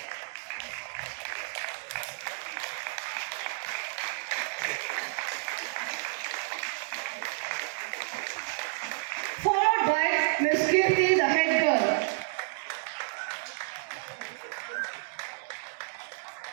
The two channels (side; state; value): left; silent; 57 dB below the other